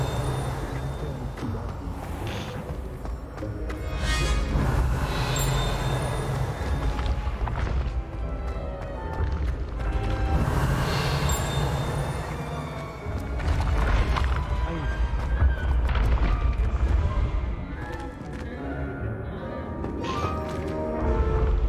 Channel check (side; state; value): both; identical; correlation 1.00